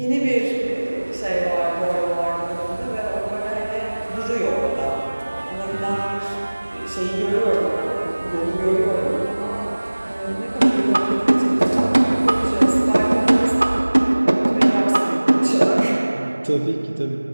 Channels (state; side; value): inverted; both; correlation -1.00